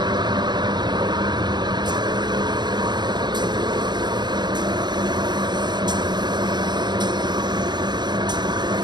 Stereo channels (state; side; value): late; left; 0.21 ms